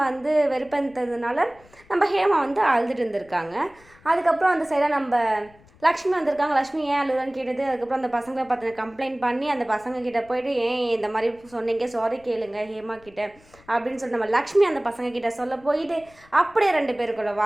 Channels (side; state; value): left; noise; rumble, 27 dB below the sound